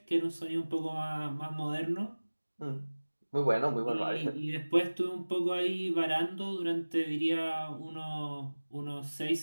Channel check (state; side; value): inverted; both; correlation -1.00